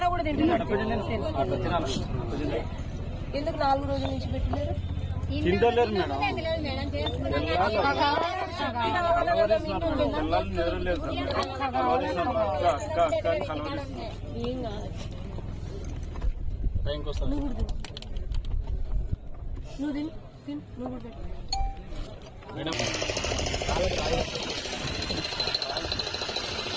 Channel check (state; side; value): identical; both; correlation 1.00